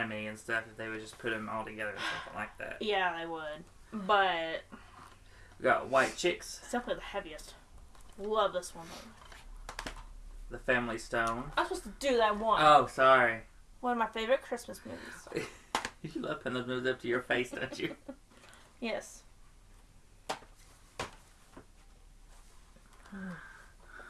and stuff, if they would just put them all together or something like that. Yeah, they would. But we got White Chicks. It's definitely the heaviest. Love this one. The Family Stone. I was supposed to do that one. Oh, sorry. One of my favorite Christmas movies. You love putting those movies up to your face, don't you? Yes.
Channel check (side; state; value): both; identical; correlation 1.00